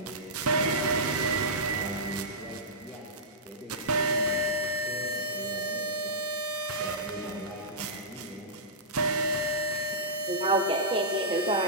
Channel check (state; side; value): normal; both; correlation -0.15